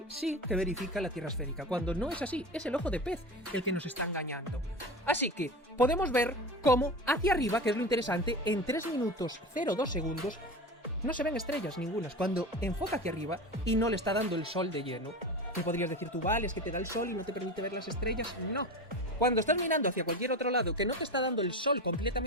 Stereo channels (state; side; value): normal; both; correlation 0.28